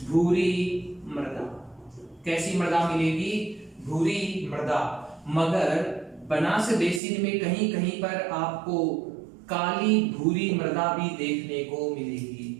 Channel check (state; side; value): drops out; left; at 7.0 s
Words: भूरी मृदा। कैसी मृदा मिलेगी? भूरी मृदा। मगर बनास बेसिन में कहीं कहीं पर आपको काली भूरी मृदा भी देखने को मिलेगी।